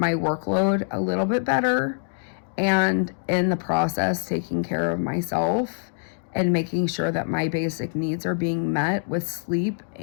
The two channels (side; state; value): right; silent; digital silence